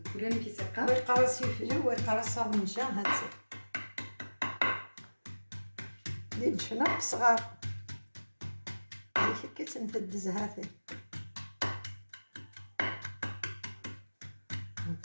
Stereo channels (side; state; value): both; inverted; correlation -1.00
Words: ولا كيسقى ويقرص يفجر ويقرص سورنجا هاتي اللي جفنا صغار هيك كتنفدز هاتي